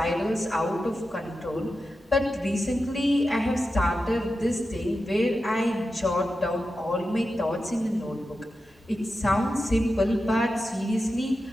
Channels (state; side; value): normal; both; correlation 0.91